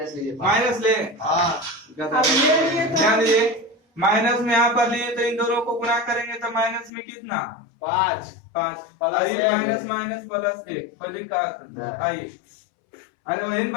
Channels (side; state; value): right; drops out; at 6.9 s